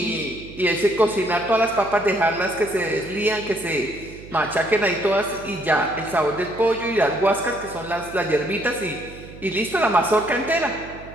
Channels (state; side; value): noise; right; hum, 17 dB below the sound